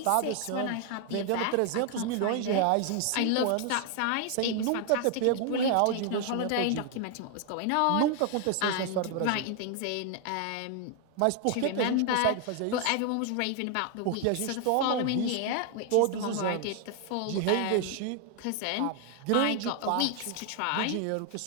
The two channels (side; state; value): both; different; correlation 0.00